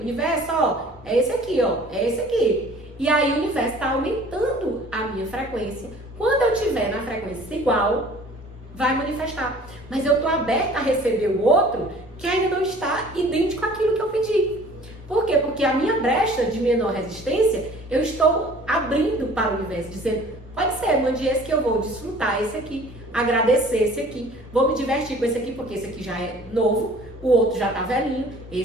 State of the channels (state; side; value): normal; both; correlation 0.49